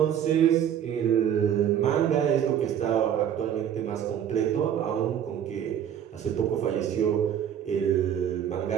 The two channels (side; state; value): left; quieter; 9.4 dB